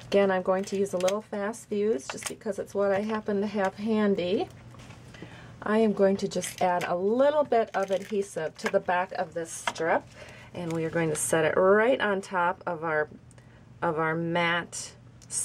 again I'm going to use a little fast fuse just because it's what I happen to have handy. I am going to just add a little bit of adhesive to the back of this strip, and we are going to set it right on top of our matte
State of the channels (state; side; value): identical; both; correlation 1.00